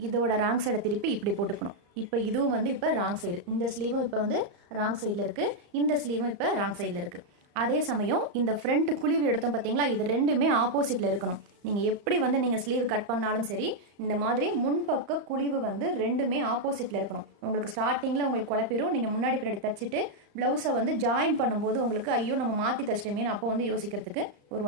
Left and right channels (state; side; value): late; left; 35 ms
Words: இதோட ராங் சைடை திருப்பி இப்படி போட்டுக்கணும். இப்போ இதுவும் வந்து இப்போ ராங் சைடு. இந்த ஸ்லீவும் இப்போ வந்து ராங் சைடில் இருக்குது. இந்த ஸ்லீவும் இப்போ ராங் சைடில் இருக்குது. அதே சமயம் இந்த ஃப்ரண்ட் குழிவு எடுத்தோம் பார்த்தீங்களா. இது 2மே ஆப்போசிட்டில் இருக்கணும். நீங்கள் எப்படி வந்து நீங்கள் ஸ்லீவ் கட் பண்ணாலும் சரி இந்த மாதிரி முன்பக்க குழிவு வந்து 2மே ஆப்போசிட்டில் இருக்கணும். உங்களுக்கு ஸ்டார்டிங்கில் உங்களுக்கு குழப்பிடும். நீங்கள் முன்னாடி பின்னாடி தச்சுட்டு ப்ளவுஸை வந்து ஜாயின் பண்ணும்போது உங்களுக்கு ஐயோ நம்ம மாற்றி தச்சிட்டோமேனு அப்போ வந்து யோசிக்கிறதுக்கு ஒரு